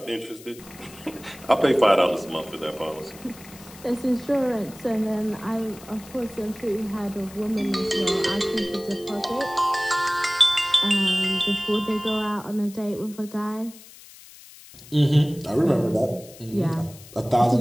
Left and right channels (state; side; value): noise; left; hiss, 20 dB below the sound